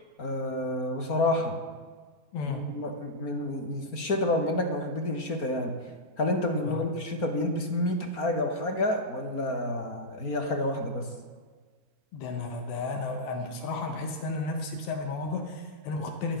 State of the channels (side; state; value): right; late; 4.3 ms